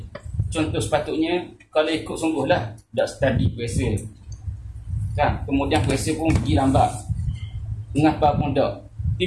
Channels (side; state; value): both; identical; correlation 1.00